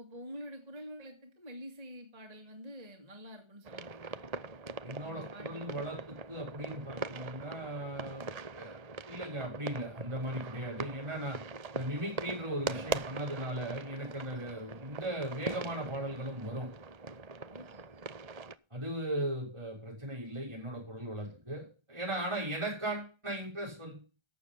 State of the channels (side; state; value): left; late; 1.3 ms